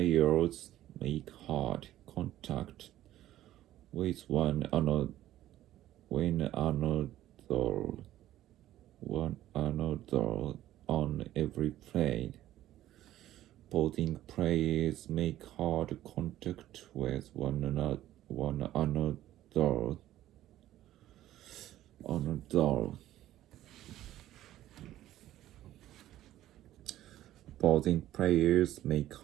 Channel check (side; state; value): left; quieter; 13.7 dB